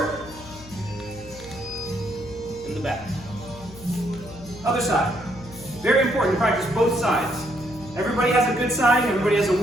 in the back. Other side. Very important to practice both sides. Everybody has a good side, everybody has a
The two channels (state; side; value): noise; left; hum, 17 dB below the sound